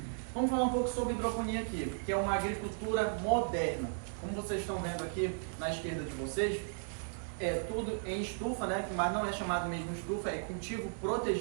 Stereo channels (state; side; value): silent; left; 54 dB below the other